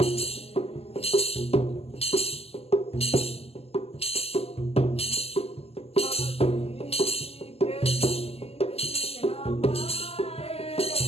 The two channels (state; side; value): late; right; 0.29 ms